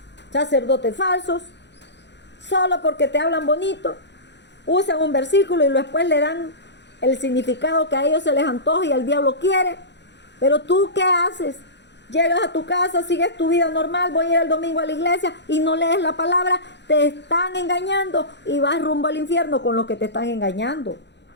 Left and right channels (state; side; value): late; right; 0.51 ms